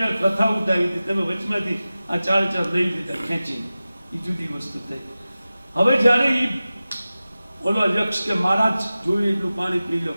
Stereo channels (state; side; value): inverted; both; correlation -0.96